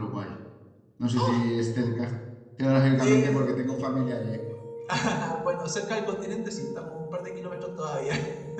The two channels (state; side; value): identical; both; correlation 1.00